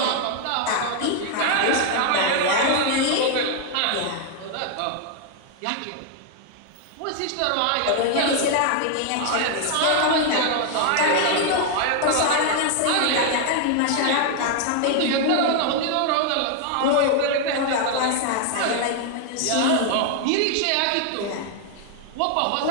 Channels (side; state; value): both; different; correlation 0.00